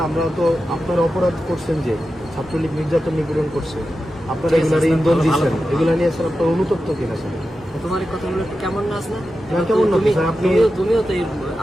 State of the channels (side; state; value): both; normal; correlation 0.91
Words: আমরা তো আপনার অপরাধ করছেন যে ছাত্রলীগ নির্যাতন নিপীড়ন করছে, আপনারা এগুলো ইন্ধন দিচ্ছেন, এগুলো নিয়ে স্যার আপনার অনুতপ্ত কিনা স্যার? তোমার কথাগুলো কেমন নাচ না? কেমন না স্যার? তুমিও তো